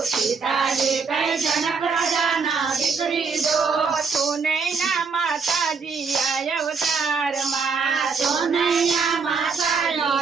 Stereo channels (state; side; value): quieter; left; 5.1 dB